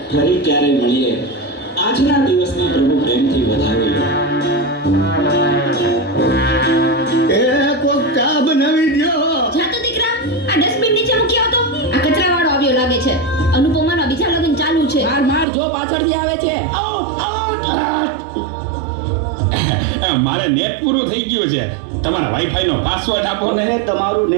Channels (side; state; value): left; drops out; at 15.5 s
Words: ફરી ક્યારે મળીએ. આજના દિવસને પ્રભુ પ્રેમથી વધાવી લો. એ કોક ચા બનાવી દ્યો. જા તો દીકરા, આ ડસ્ટબિન નીચે મૂકી આવતો. આ કચરાવાળો આવ્યો લાગે છે. અનુપમાનો બીજા લગ્ન ચાલુ છે. માર જો પાછળથી આવે છે. મારે નેટ પૂરું થઈ ગયું છે. તમારા વાઈફાઈ નો પાસવર્ડ આપો ને. તમે તમારું